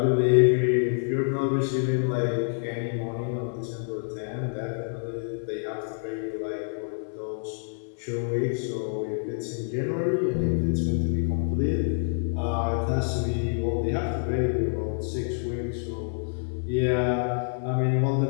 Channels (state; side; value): silent; right; 60 dB below the other